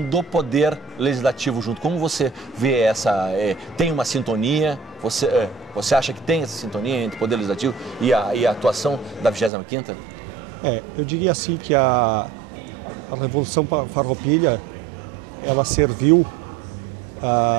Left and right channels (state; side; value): drops out; left; at 9.5 s